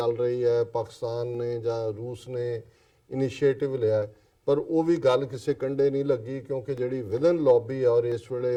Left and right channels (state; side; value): identical; both; correlation 1.00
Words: ਰਹੀ ਹੈ, ਪਾਕਿਸਤਾਨ ਨੇ ਜਾਂ ਰੂਸ ਨੇ ਇਨੀਸ਼ੀਏਟਿਵ ਲਿਆ, ਪਰ ਉਹ ਵੀ ਗੱਲ ਕਿਸੇ ਕੰਢੇ ਨਹੀਂ ਲੱਗੀ ਕਿਉਂਕਿ ਜਿਹੜੀ ਵਿਦਨ ਲੌਬੀ ਆ ਔਰ ਇਸ ਵੇਲੇ